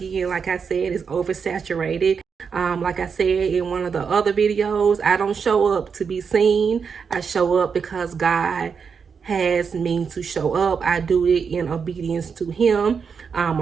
like I said, is oversaturated. Like I said in one of the other videos, I don't show up to be seen. I show up because God has me to show up. I do it in obedience to him.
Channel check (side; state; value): left; quieter; 6.1 dB